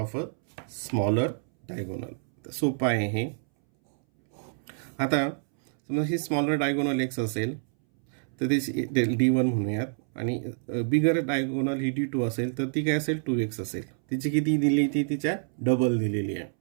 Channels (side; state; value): left; silent; 60 dB below the other